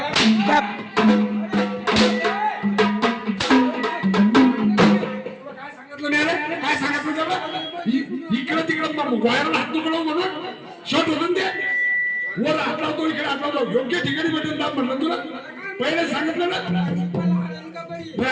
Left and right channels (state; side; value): identical; both; correlation 1.00